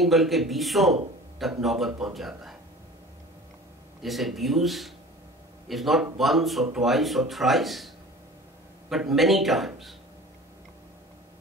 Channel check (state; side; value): normal; both; correlation 0.41